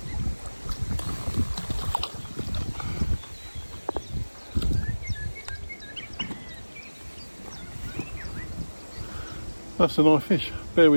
That's a nice fish. Bear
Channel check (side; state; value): both; inverted; correlation -1.00